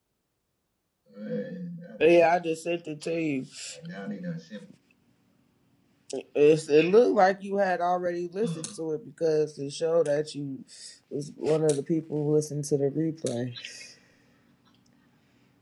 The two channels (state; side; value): identical; both; correlation 1.00